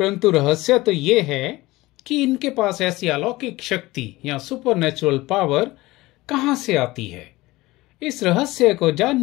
रहस्य तो ये है कि इनके पास ऐसी अलौकिक शक्ति या सुपरनेचुरल पावर कहां से आती है। इस रहस्य को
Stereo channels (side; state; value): right; quieter; 19.5 dB